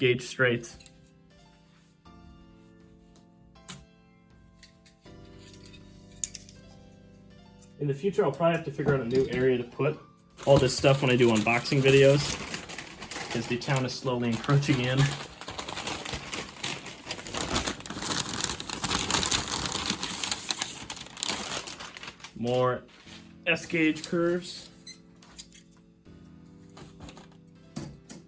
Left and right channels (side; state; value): both; identical; correlation 1.00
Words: straights. In the future, I'll probably have to figure out a new area to put all this stuff when I do unboxing videos, because the town is slowly encroaching in. More S gauge curves.